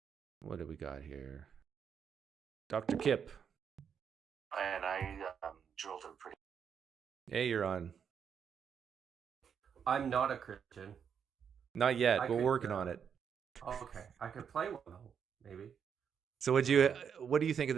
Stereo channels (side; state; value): left; quieter; 7.4 dB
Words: What do we got here? Dr. Kipp. And I drilled him pretty. Hey, you're on. I'm not a Christian. Not yet. We're working on it. Okay, I could play one though, maybe. So what do you think of